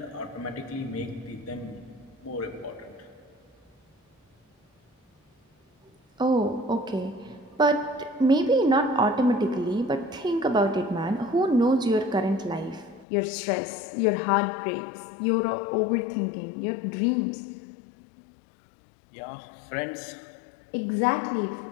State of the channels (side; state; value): right; drops out; at 13.1 s